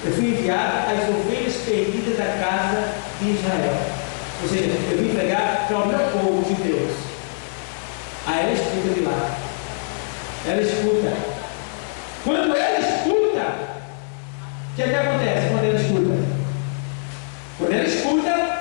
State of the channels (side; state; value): right; silent; digital silence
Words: eu fui enviado às ovelhas perdidas da casa de Israel. Ou seja, eu vim pregar para o meu povo de Deus. Aí ela escuta de lá. Ela escuta. Quando ela escuta, o que acontece quando ela escuta? Quando ela escuta,